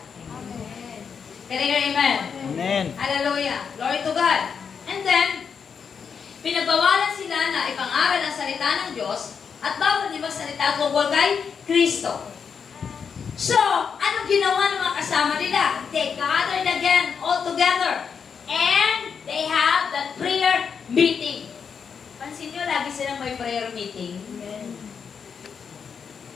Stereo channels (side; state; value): right; quieter; 6.5 dB